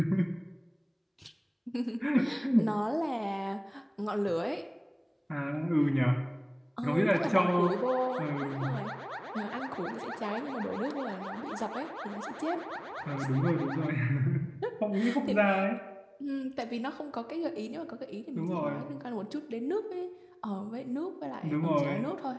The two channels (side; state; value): both; identical; correlation 1.00